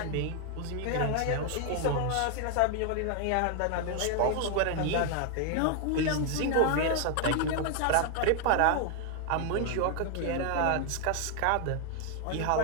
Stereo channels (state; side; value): different; both; correlation 0.00